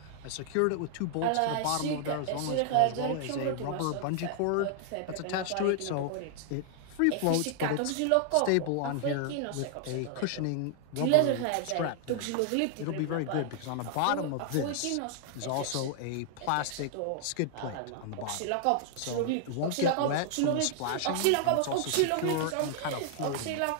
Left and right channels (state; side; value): different; both; correlation 0.00